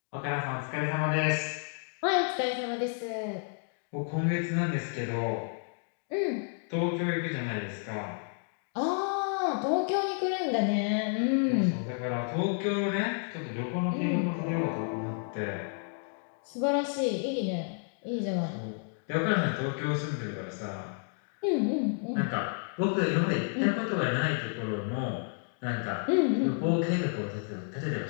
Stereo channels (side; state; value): right; silent; 57 dB below the other